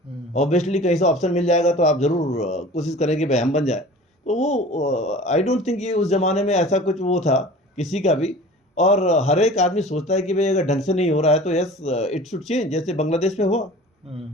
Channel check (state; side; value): normal; both; correlation 0.42